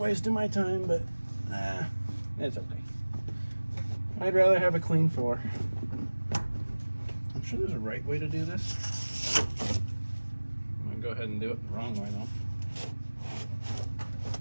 my time, but it's okay. I'd rather have a clean floor. I'm sure there's a right way to do this. I'm gonna go ahead and do it the wrong way though.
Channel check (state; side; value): inverted; both; correlation -1.00